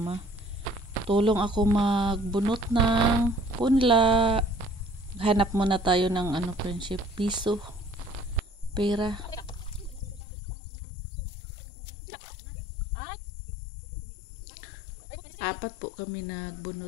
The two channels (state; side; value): drops out; right; at 10.2 s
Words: Tulong ako magbunot ng punla. Hanap muna tayo ng friendship, piso, pera. Apat po kami